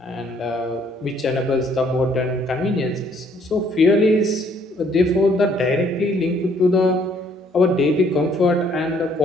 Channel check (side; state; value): both; normal; correlation 0.64